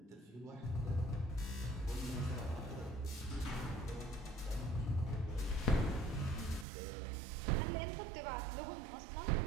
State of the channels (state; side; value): drops out; left; at 6.7 s